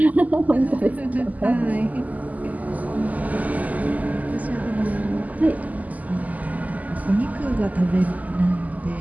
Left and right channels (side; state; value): left; late; 0.078 ms